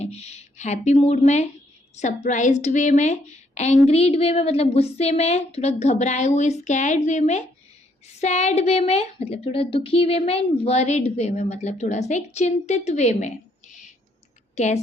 हैप्पी मूड में, सरप्राइज्ड वे में, एंग्रीड वे में मतलब गुस्से में, थोड़ा घबराए हुए स्कैर्ड वे में, सैड वे में मतलब थोड़ा दुखी वे में, एंड वरीड वे में मतलब थोड़ा सा एक चिंतित वे में।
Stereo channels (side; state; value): both; normal; correlation 0.70